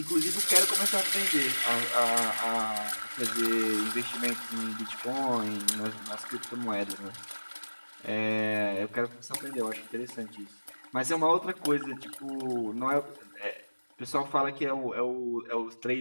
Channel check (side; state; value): both; inverted; correlation -1.00